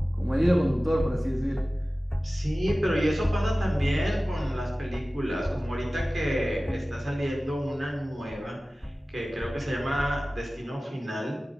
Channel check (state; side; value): normal; both; correlation 0.97